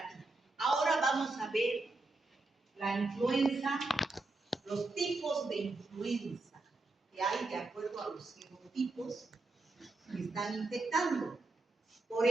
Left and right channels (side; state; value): left; quieter; 3.2 dB